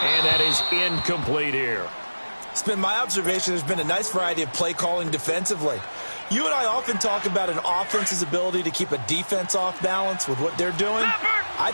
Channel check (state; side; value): inverted; both; correlation -1.00